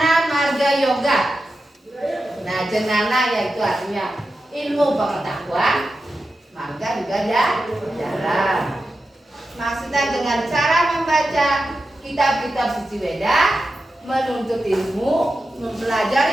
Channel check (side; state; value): both; normal; correlation 0.91